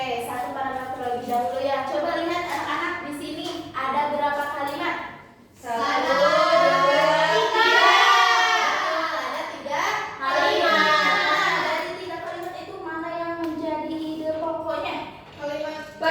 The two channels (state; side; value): identical; both; correlation 1.00